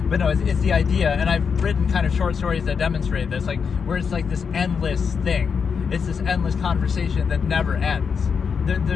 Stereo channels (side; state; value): right; quieter; 6.2 dB